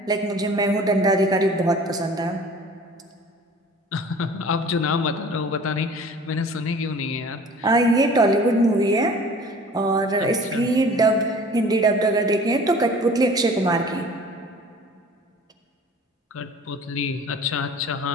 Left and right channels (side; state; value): both; normal; correlation 0.46